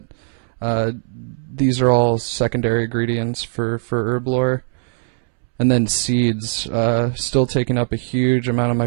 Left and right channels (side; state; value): left; silent; 66 dB below the other